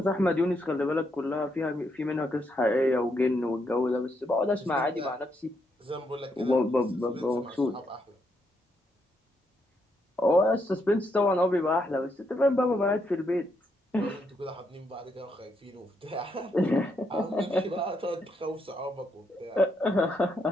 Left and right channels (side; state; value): both; normal; correlation 0.77